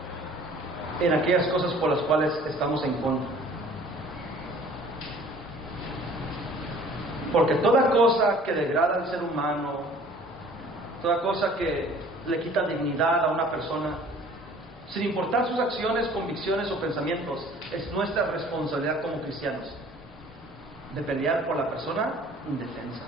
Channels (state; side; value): normal; both; correlation 0.51